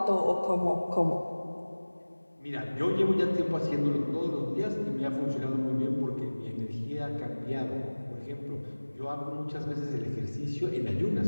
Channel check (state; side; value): inverted; both; correlation -1.00